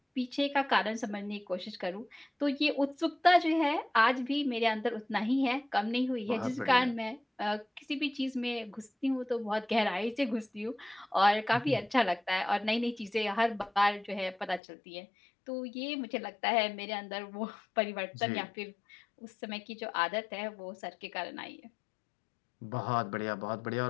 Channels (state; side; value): drops out; right; at 14.6 s